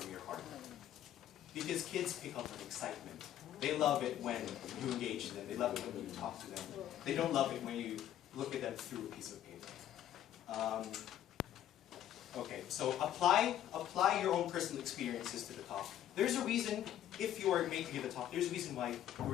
your heart. Because kids pick up on excitement. They love it when you engage them. They love it when you talk to them. They don't love it when you look at them through a piece of paper. Okay, so apply your own personal experiences to the talk. There's a reason, if you are made to give a talk, there's a reason why you were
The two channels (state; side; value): quieter; right; 11.6 dB